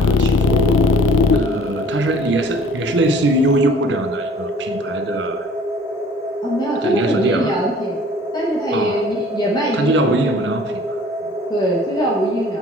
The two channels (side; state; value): both; normal; correlation 0.51